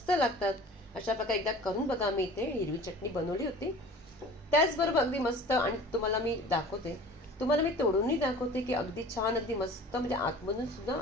लागतात. अशा प्रकारे एकदा करून बघा. मी इथे हिरवी चटणी बनवली होती. त्याचबरोबर अगदी मस्त, आणि तुम्हाला मी दाखवते, तुम्हाला मी तोडूनही दाखवते की अगदी छान, अगदी मस्त, म्हणजे आतमधून सुद्धा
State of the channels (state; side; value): normal; both; correlation 0.44